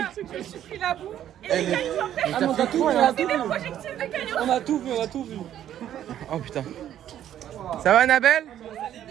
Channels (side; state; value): left; quieter; 11.1 dB